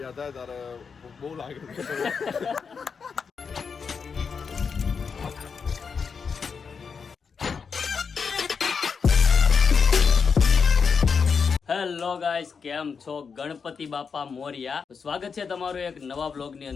થાય ત્યારે બહુ લાગે છે. હેલો ગાઈસ, કેમ છો? ગણપતિ બાપા મોરિયા. સ્વાગત છે તમારું એક નવા વ્લોગ ની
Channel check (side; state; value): right; quieter; 5.8 dB